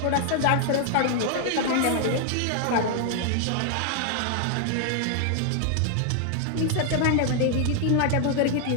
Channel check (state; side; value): different; both; correlation 0.00